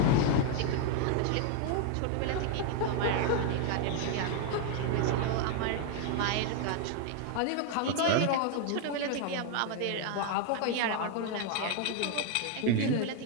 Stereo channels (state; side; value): different; both; correlation 0.00